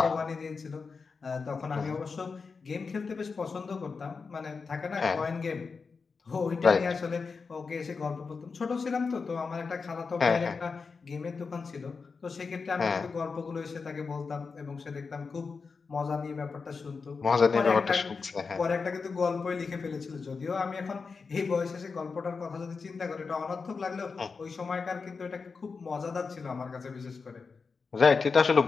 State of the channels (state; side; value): quieter; right; 4.9 dB